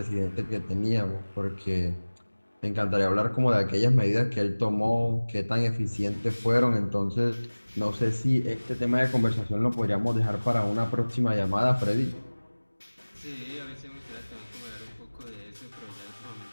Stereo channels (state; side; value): inverted; both; correlation -1.00